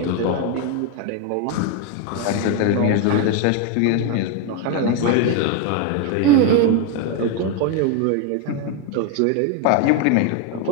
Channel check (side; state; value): both; different; correlation 0.01